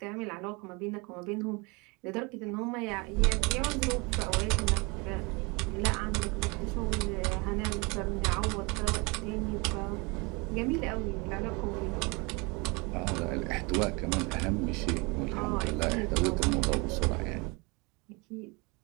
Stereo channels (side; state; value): left; quieter; 28.2 dB